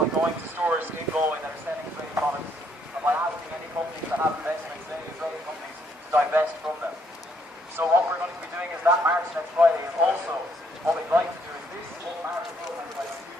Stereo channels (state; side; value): normal; both; correlation 0.70